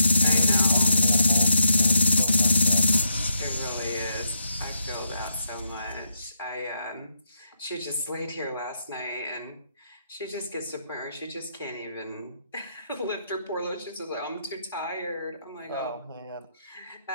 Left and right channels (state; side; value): inverted; both; correlation -0.78